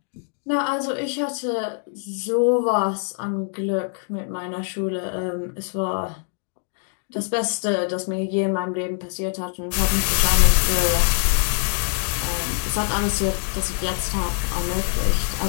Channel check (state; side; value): silent; right; 63 dB below the other